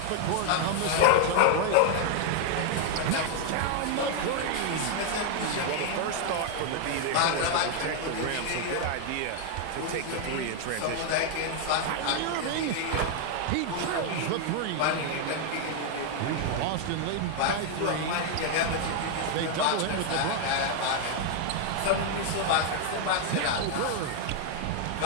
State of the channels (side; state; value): both; different; correlation 0.00